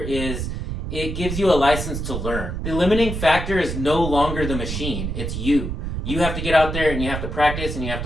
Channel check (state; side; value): noise; right; rumble, 4 dB below the sound